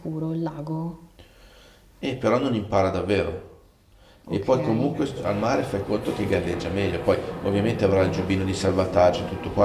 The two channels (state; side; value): identical; both; correlation 1.00